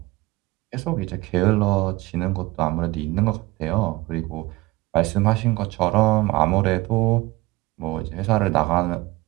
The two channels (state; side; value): quieter; left; 20.6 dB